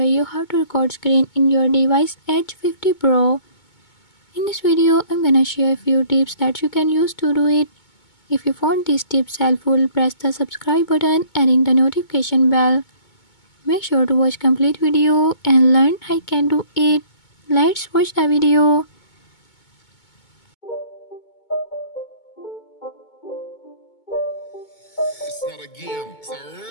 you how to record screen in your device Edge 50 Pro. In this video, I'm gonna share a few tips that you can use to do it. If you found these tips helpful, press the subscribe button and ring the notification bell. Make sure to watch complete video and learn I can do it. Let's watch the video. It's not a game, it's a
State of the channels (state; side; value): late; right; 2.2 ms